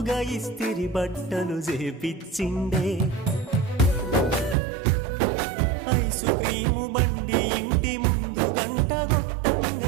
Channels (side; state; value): left; drops out; at 4.5 s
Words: ఇస్తిరి బట్టలు చేపిచ్చిండే ఐసు క్రీము బండి ఇంటి ముందు గంట